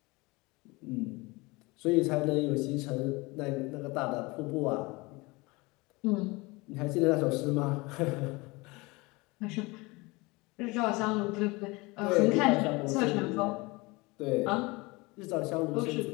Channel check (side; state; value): right; quieter; 24.4 dB